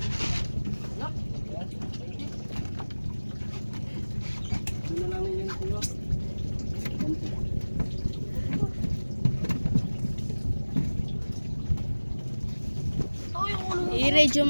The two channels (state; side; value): inverted; both; correlation -1.00